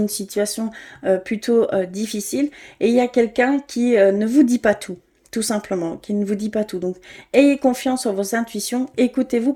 situation plutôt difficile et il y a quelqu'un qui ne vous dit pas tout simplement, qui ne vous dit pas tout. Donc, ayez confiance en vos intuitions, écoutez-vous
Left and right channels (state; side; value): identical; both; correlation 1.00